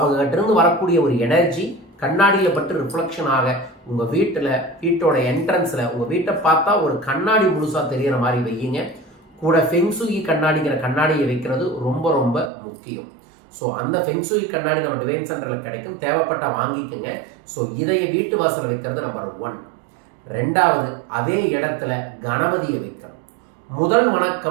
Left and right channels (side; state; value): left; drops out; at 12.5 s